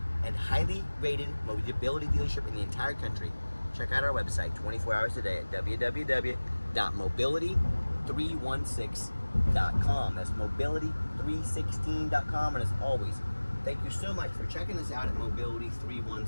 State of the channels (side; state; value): both; inverted; correlation -1.00